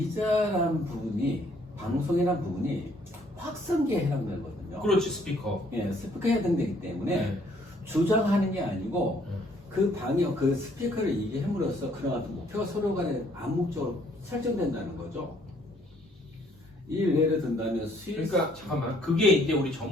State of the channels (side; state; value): both; normal; correlation 0.64